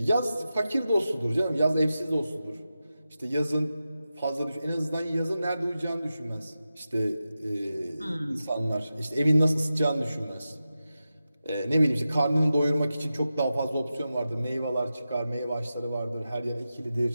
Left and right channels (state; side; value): inverted; both; correlation -0.92